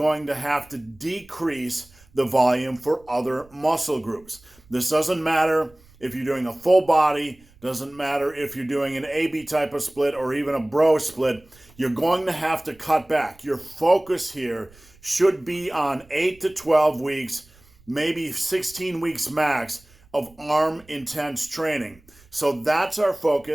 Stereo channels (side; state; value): right; noise; rumble, 28 dB below the sound